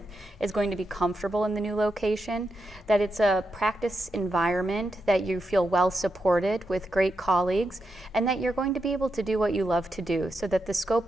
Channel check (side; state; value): both; normal; correlation 0.86